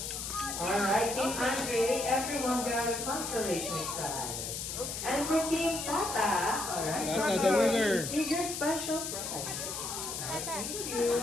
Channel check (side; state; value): left; noise; hiss, 5 dB below the sound